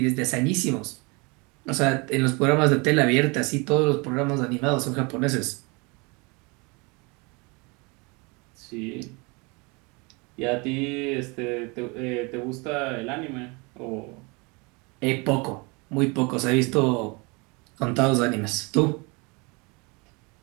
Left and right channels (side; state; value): left; quieter; 28.6 dB